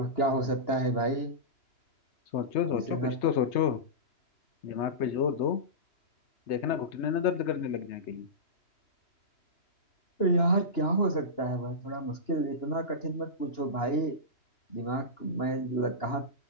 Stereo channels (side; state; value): right; late; 2.9 ms